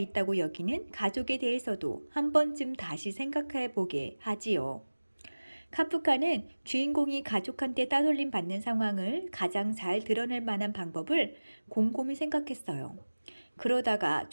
여기는 가족에 대해서도 한 번쯤 다시 생각해 보게 하지요. 카프카는 주인공이 가족한테 따돌림 받는 상황을 가장 잘 드러낼 만한 방법을 곰곰이 생각했어요. 그러다가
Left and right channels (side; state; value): both; inverted; correlation -1.00